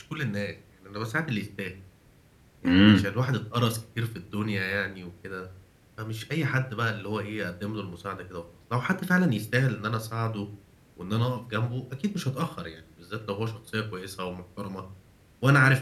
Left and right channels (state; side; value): identical; both; correlation 1.00